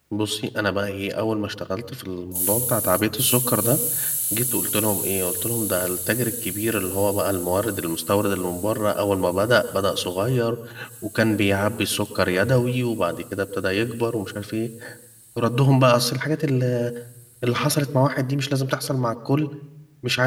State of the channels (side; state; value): both; identical; correlation 1.00